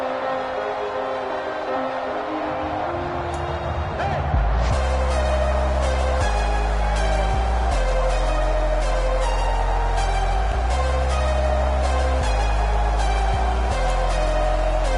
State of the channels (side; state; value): both; identical; correlation 1.00